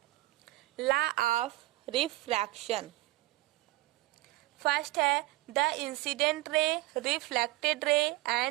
लॉ ऑफ रिफ्रैक्शन। फर्स्ट है, the incident ray, reflected ray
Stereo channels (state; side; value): quieter; left; 19.2 dB